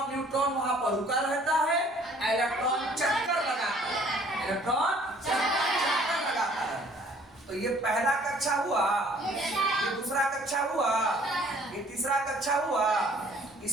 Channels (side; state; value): both; normal; correlation 0.57